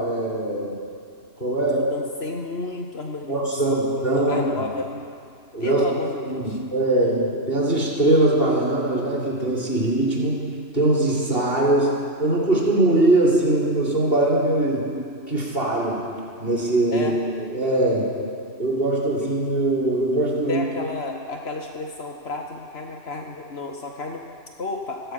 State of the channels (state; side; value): late; right; 3.0 ms